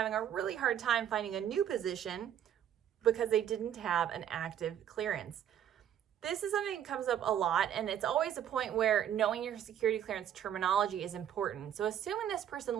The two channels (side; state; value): left; quieter; 10.0 dB